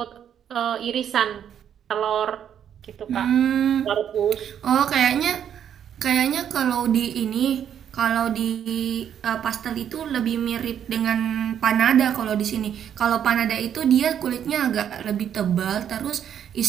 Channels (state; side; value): quieter; left; 9.2 dB